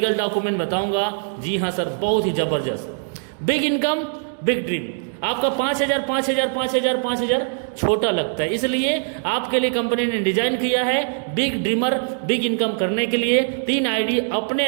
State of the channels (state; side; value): silent; left; digital silence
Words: डॉक्यूमेंट बताऊंगा। जी हाँ सर, बहुत ही जबरदस्त। Big income big dream. आपका 5,000 छोटा लगता है, इसलिए आपके लिए कंपनी ने डिजाइन किया है बिग ड्रीमर, बिग इनकम करने के लिए 3 आईडी अपने